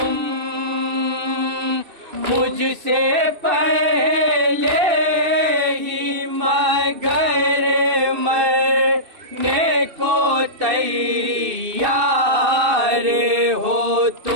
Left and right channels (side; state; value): left; late; 2.6 ms